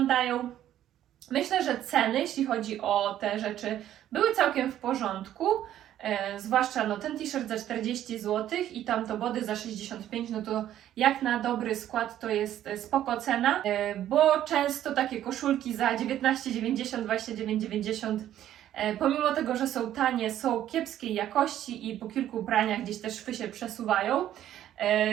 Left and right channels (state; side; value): quieter; left; 11.8 dB